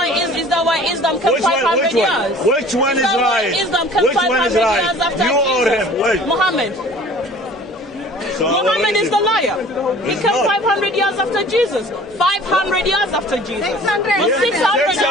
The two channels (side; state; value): both; normal; correlation 0.48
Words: Islam comes 500 years? Which one is right? Which one is right? You or him? Which? Muhammad. So Muhammad is the liar. He came 500 years after Jesus. 500 years after Jesus.